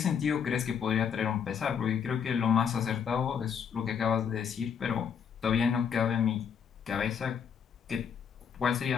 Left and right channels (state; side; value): quieter; right; 7.3 dB